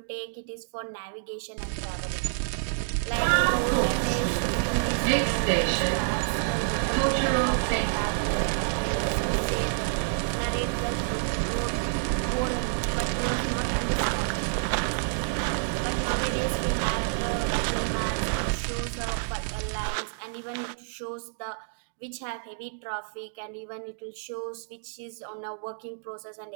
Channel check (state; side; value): silent; left; digital silence